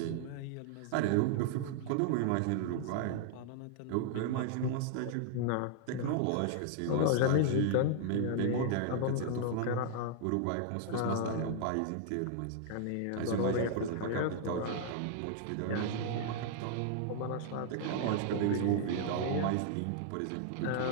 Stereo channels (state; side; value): different; both; correlation -0.01